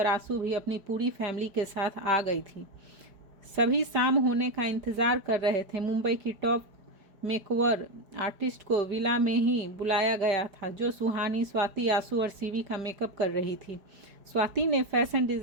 आंसू भी अपनी पूरी फैमिली के साथ आ गई थी। सभी शाम होने का इंतजार कर रहे थे। मुंबई की टॉप मेकओवर आर्टिस्ट को विला में ही बुलाया गया था, जो सुहानी, स्वाति, आंसू और शिवी का मेकअप कर रही थी। स्वाति ने फैशन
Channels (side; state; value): left; late; 5.1 ms